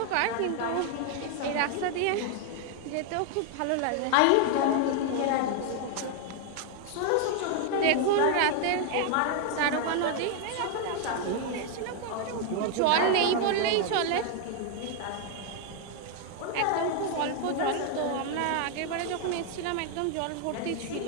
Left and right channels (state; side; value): different; both; correlation 0.00